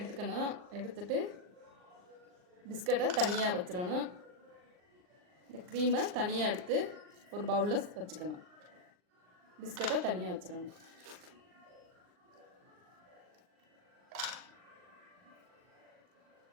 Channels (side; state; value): left; late; 39 ms